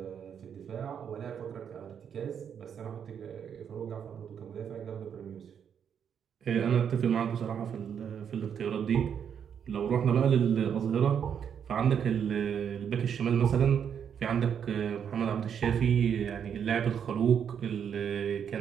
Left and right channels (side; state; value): left; quieter; 8.0 dB